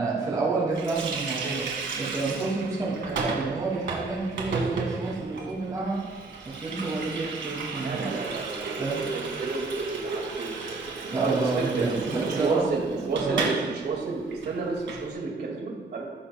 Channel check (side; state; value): left; quieter; 3.5 dB